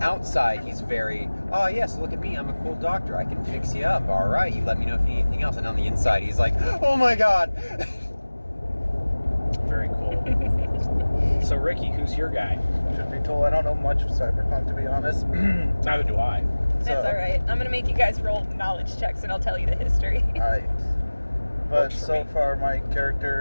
outside, he's very, oh yes, look at me, I'm a cool doctor, I can fix you up, all right, you let me know if you need anything else. And on the inside, he's like, oh my god. Very cool. So Ricky, who's your guy? Should be told, I don't know much of Cyberpunk, to be honest. Neither do I. That's alright. I'm gonna make you guys roll knowledge checks and I'll tell you the history. Alright. But Works for so me. far, my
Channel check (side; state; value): both; inverted; correlation -1.00